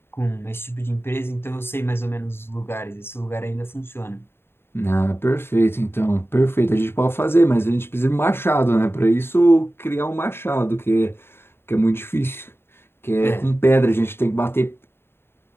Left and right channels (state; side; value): late; right; 0.11 ms